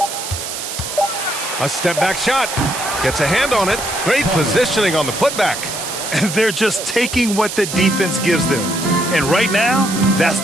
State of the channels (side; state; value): right; noise; hiss, 6 dB below the sound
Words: A step back shot. Gets a hand on it. Great positioning on the putback. And they're just taking what the defense gives them. And right now, that's